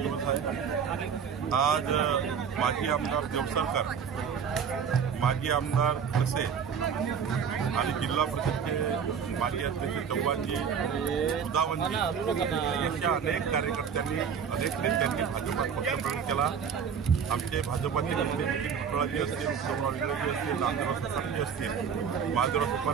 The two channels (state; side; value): quieter; left; 7.1 dB